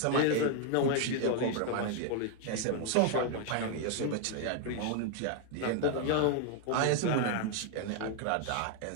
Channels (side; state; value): both; different; correlation 0.00